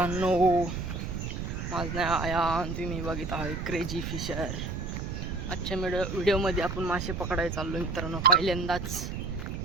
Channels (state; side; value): noise; right; rumble, 4 dB below the sound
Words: माझं नाव आयान. तुम्ही बघित आहे क्रेजी फिशर. आजच्या व्हिडिओमध्ये आपण मासे पकडायला चाललो मित्रांनो. पहिल्यांदाच